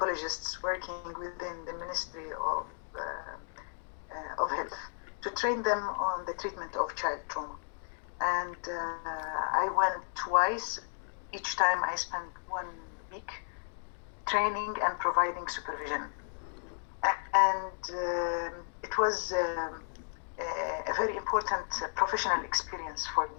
working within the Ministry of Health to train them on the treatment of child trauma. And I went twice. Each time I spent 1 week training and providing supervision. And it was a very important professional experience for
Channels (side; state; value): right; silent; digital silence